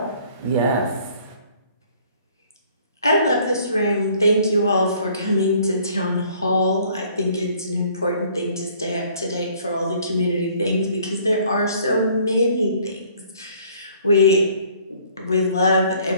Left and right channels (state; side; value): inverted; both; correlation -0.58